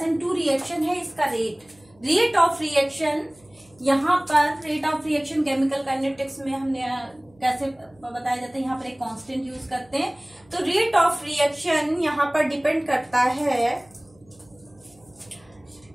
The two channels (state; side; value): noise; right; hum, 30 dB below the sound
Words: रिएक्शन है इसका रेट ऑफ रिएक्शन। यहाँ पर rate of reaction chemical kinetics में हमने कैसे बताया जाता है, यहाँ पर एक कांस्टेंट यूज करते हैं। तो रेट ऑफ रिएक्शन यहाँ पर डिपेंड करता है